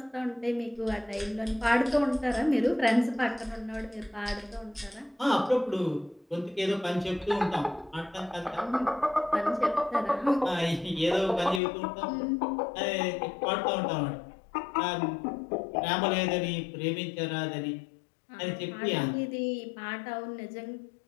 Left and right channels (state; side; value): drops out; right; at 11.6 s